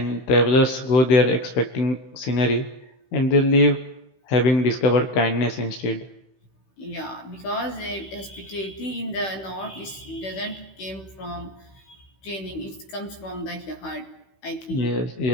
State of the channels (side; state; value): right; late; 16 ms